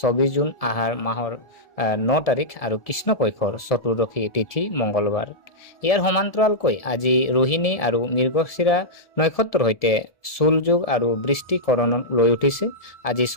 24 জুন আহাৰ মাহৰ 9 তাৰিখ আৰু কৃষ্ণপক্ষৰ চতুৰ্দশী তিথি মঙ্গলবাৰ। ইয়াৰ সমান্তৰালকৈ আজি ৰোহিণী আৰু মৃগশিৰা নক্ষত্ৰৰ সৈতে চুলযোগ আৰু বৃষ্টিকৰণ লৈ উঠিছে। আজি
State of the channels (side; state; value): right; late; 1.7 ms